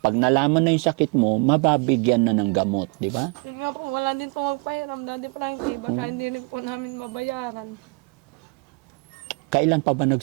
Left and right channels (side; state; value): left; quieter; 31.5 dB